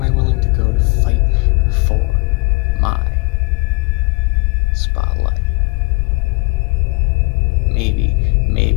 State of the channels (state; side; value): quieter; right; 27.5 dB